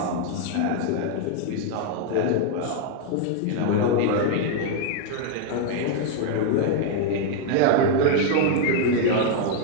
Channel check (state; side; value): different; both; correlation 0.00